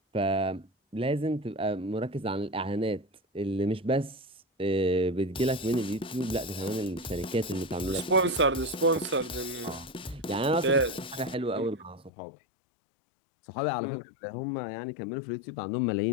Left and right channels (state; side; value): drops out; right; at 12.1 s